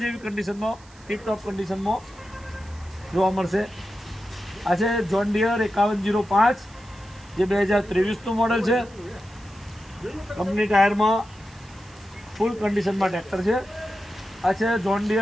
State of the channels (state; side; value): noise; right; hiss, 26 dB below the sound